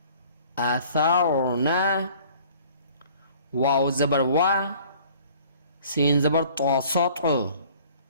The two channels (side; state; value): both; inverted; correlation -0.52